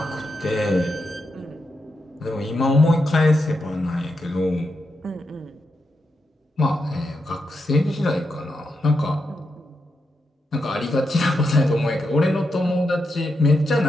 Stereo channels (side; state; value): both; normal; correlation 0.85